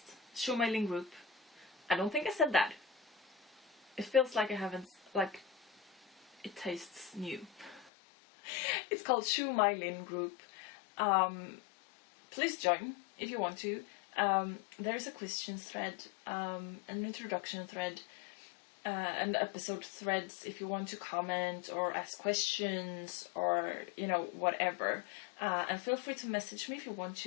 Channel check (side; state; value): right; drops out; at 7.9 s